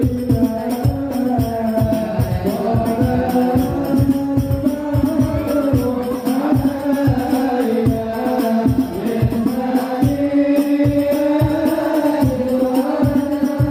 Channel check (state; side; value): identical; both; correlation 1.00